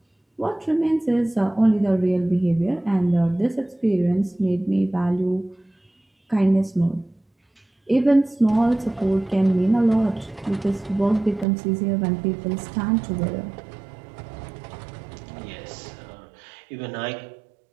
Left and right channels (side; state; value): left; drops out; at 11.5 s